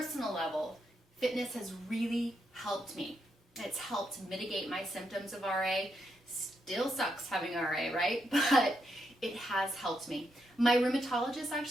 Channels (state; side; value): normal; both; correlation 0.81